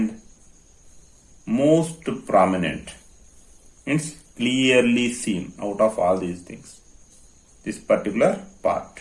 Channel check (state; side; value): identical; both; correlation 1.00